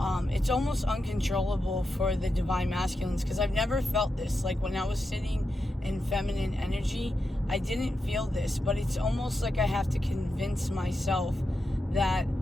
It's almost uncontrollable for the divine masculines, because I've never felt this. Like when I was sitting in feminine energy, I didn't feel this, but it's almost like I have to convince myself that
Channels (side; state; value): both; normal; correlation 0.87